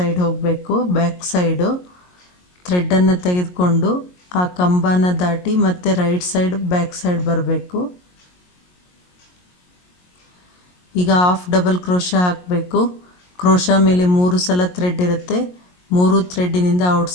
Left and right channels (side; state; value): right; late; 22 ms